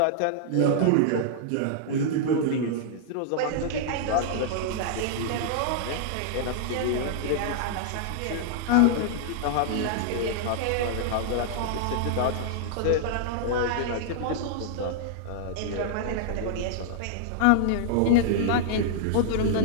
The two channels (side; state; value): both; different; correlation -0.01